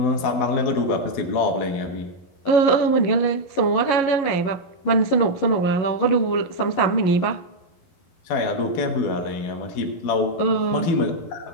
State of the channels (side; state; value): right; late; 11 ms